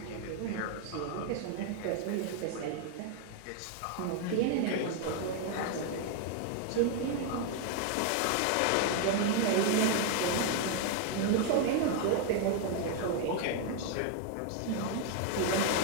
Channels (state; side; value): different; both; correlation 0.00